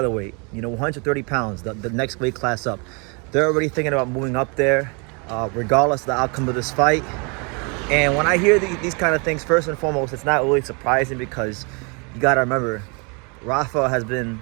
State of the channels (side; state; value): left; quieter; 32.9 dB